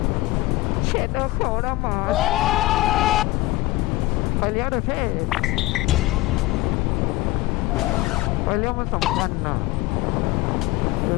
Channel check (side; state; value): right; quieter; 19.1 dB